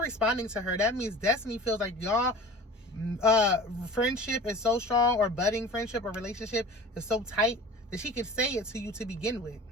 responding to her, that means Destiny feels like y'all friendship is so strong, or budding friendship or relationship is so tight that she could say it to you to begin with.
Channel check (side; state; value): both; normal; correlation 0.40